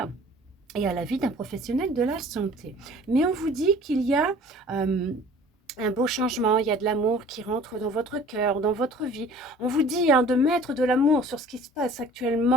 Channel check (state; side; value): normal; both; correlation 0.48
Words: et à l'avis d'un professionnel de la santé. Mais on vous dit qu'il y a un beau changement, il y a de l'amour qui rentre dans votre cœur, dans votre vie. On vous dit hein, de mettre de l'amour sur ce qui se passe